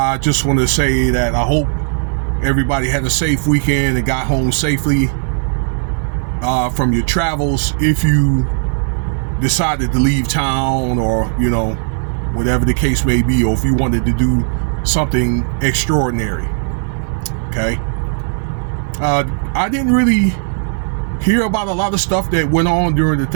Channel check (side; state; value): left; silent; 69 dB below the other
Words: just want to say that I hope everybody had a safe weekend and got home safely from your travels. If you decided to leave town, or whatever the case may be, or if you wanted to do something extraordinary. Okay. I didn't really hear about a lot of stuff that went on during the